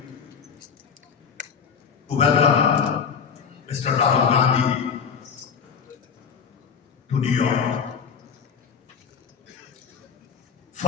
to welcome Mr. Rahul Gandhi to New York.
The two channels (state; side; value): quieter; right; 6.6 dB